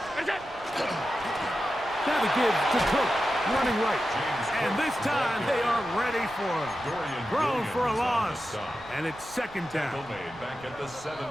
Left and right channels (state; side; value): noise; right; rumble, 22 dB below the sound